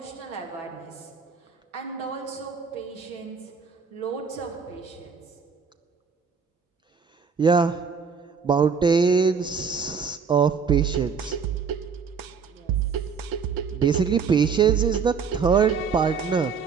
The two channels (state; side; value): quieter; left; 5.9 dB